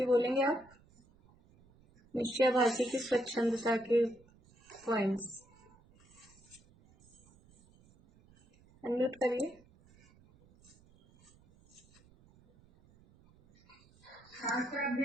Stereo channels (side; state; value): right; noise; rumble, 28 dB below the sound